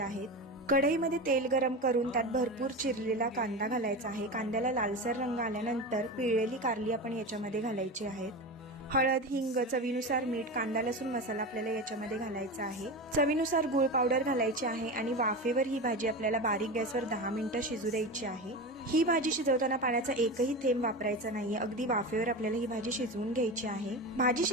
कढईमध्ये तेल गरम करून त्यात भरपूर चिरलेला कांदा घालायचा आहे। कांद्याला लालसर रंग आल्यानंतर पिळलेली कारली आपण याच्यामध्ये घालायची आहेत। हळद, हिंग, चवीनुसार मीठ, कांदा लसूण मसाला आपल्याला याच्यामध्ये घालायचा आहे। चवीनुसार गूळ पावडर घालायची आहे आणि वाफेवर ही भाजी आपल्याला बारीक गॅसवर 10 मिनिटं शिजू द्यायची आहे। ही भाजी शिजवताना पाण्याचा एकही थेंब वापरायचा नाहीये, अगदी वाफेवर आपल्याला ही भाजी शिजवून घ्यायची आहे। भाजी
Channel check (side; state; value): both; normal; correlation 0.24